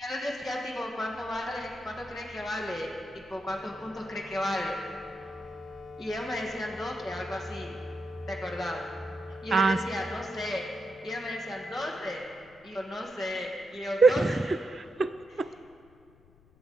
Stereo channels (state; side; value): noise; left; rumble, 28 dB below the sound